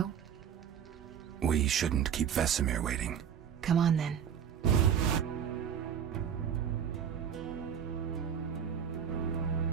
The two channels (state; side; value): quieter; left; 8.4 dB